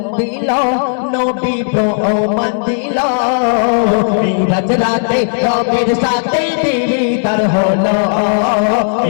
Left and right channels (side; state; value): right; silent; digital silence